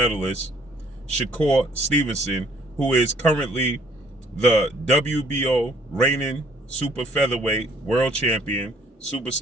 Shakur Stevenson, who is currently the WBO reigning super featherweight world champion,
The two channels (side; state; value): both; normal; correlation 0.61